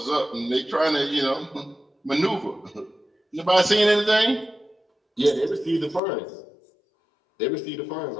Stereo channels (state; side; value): drops out; right; at 6.0 s